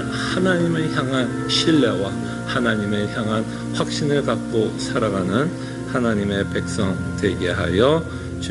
하나님을 향한 신뢰와 하나님을 향한 확신을 갖고 살아가는 하나님의 백성 되게 하여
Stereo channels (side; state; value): both; identical; correlation 1.00